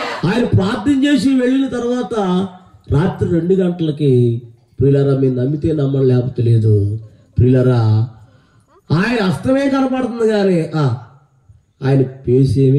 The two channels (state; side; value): identical; both; correlation 1.00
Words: ఆయన ప్రార్థన చేసి వెళ్ళిన తర్వాత రాత్రి 2 గంటలకి ప్రియులారా, మీరు నమ్మితే నమ్మడం లేకపోతే లేదు ప్రియులారా, ఆయన హస్తమే కనపడుతుంది కానీ ఆయన